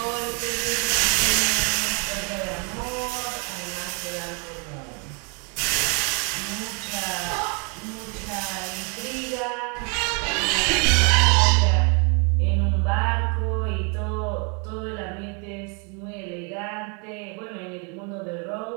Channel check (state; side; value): quieter; left; 35.2 dB